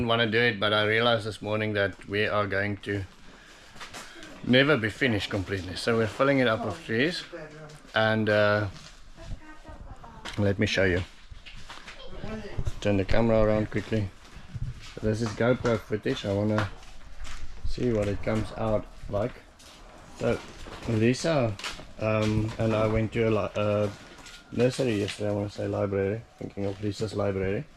want to do it, but I realized this morning that we are going to never be finished completely. So we're filling it up with trees, and let me show you. Turn the camera around quickly. So this is GoPro footage. I want to see what it comes out like. So Lissa and I went to a nursery yesterday, I want to say library, thinking of Lissa's library,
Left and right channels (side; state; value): both; identical; correlation 1.00